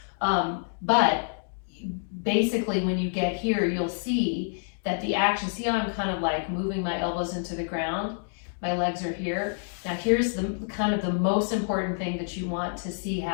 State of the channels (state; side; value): silent; right; digital silence